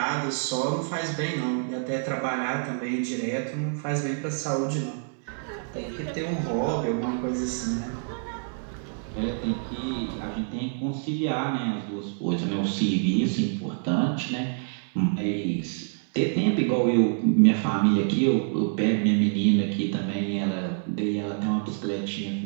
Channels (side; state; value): left; silent; 60 dB below the other